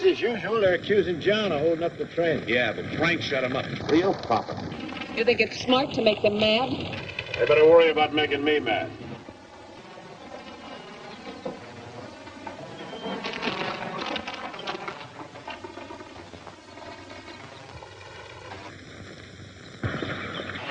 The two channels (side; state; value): both; identical; correlation 1.00